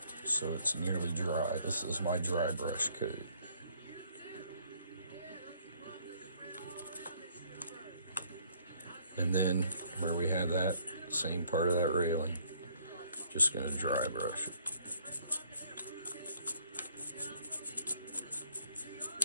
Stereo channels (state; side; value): inverted; both; correlation -0.63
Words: so it's nearly dry. This is my dry brush coat. And then where we have that same part of that railing, just going to dry brush it.